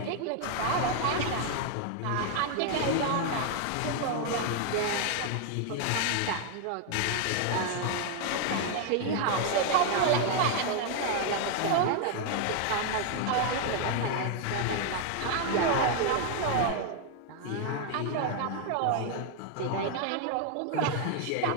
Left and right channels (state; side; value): different; both; correlation 0.00